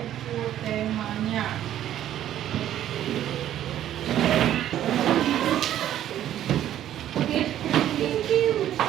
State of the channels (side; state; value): left; quieter; 11.8 dB